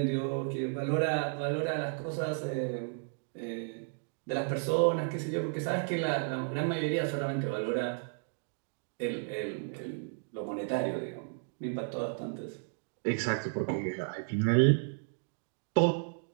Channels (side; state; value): left; silent; 56 dB below the other